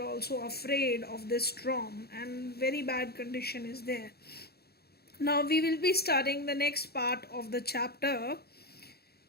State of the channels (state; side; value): late; right; 0.46 ms